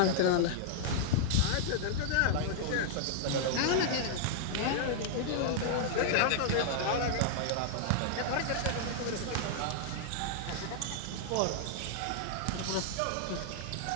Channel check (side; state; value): both; different; correlation -0.01